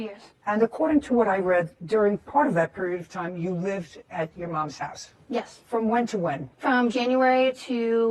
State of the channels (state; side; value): identical; both; correlation 1.00